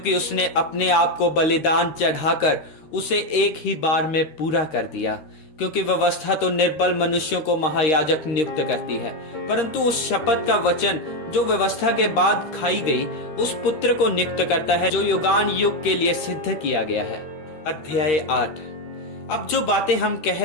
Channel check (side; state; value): right; late; 13 ms